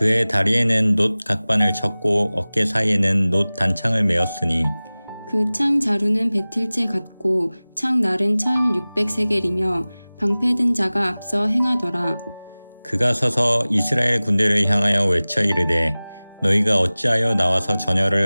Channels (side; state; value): both; inverted; correlation -0.99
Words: 다리에는 놋 각반을 쳤고 어깨 사이에는 놋 단창을 메었으니 그 창 자루는 배틀째 같고 창 날은 철 600세겔이며 방패 든 자가 앞서 행하더라. 그가 서서 이스라엘 군대를 향하여 외쳐 이르되 너희가 어찌하여 나와서